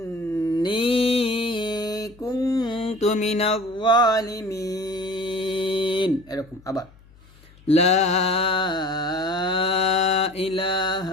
কুনতু মিনাজ জালিমিন, এরকম। আবার লা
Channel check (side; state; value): left; noise; hum, 26 dB below the sound